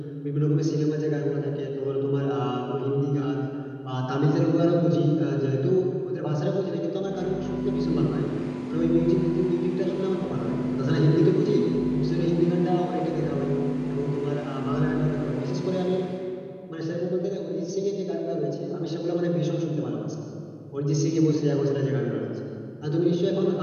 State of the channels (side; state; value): both; identical; correlation 1.00